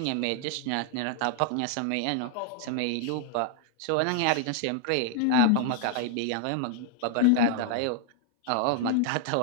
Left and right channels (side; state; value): both; different; correlation 0.00